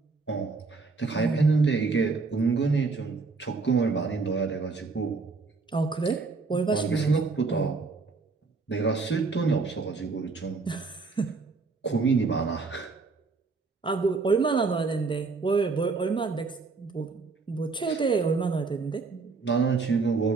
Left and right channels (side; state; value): left; quieter; 4.3 dB